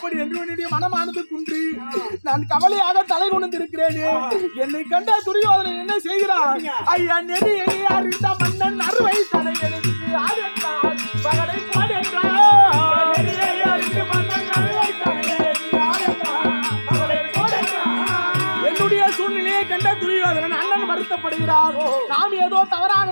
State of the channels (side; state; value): both; inverted; correlation -1.00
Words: என்று என்னுடைய மனமானது குன்றி நான் கவலையாக தலை கொண்டிருக்கிறேனே. என்னை கண்ட துரியோதனன் என்ன செய்கிறான்? ஐயா நெறி அறிந்த மன்னன் அறுவை தலை எனக்கு ஆடென்றார் பகடை பாடென்றார். அண்ணன் வருத்தப்படுகிறார். நாம் ஏதோ தவறாக